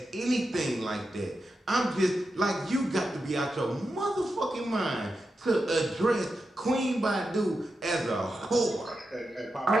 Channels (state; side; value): normal; both; correlation 0.89